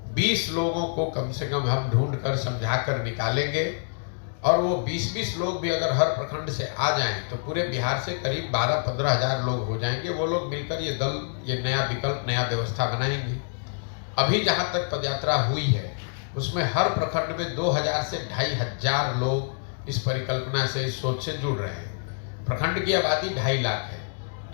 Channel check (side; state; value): right; silent; digital silence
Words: 20 लोगों को कम से कम हम ढूंढ कर समझा कर निकालेंगे, और वो 20-20 लोग भी अगर हर प्रखंड से आ जाएं तो पूरे बिहार से करीब 12-15 हजार लोग हो जाएंगे। वो लोग मिलकर ये दल, ये नया विकल्प, नया व्यवस्था बनाएंगे। अभी जहाँ तक पदयात्रा हुई है उसमें हर प्रखंड में 2000 से 2500 लोग इस परिकल्पना से, इस सोच से जुड़ रहे हैं। प्रखंड की आबादी 2.5 लाख है,